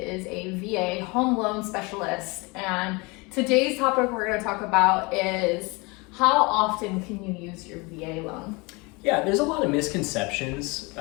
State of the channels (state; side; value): quieter; right; 26.8 dB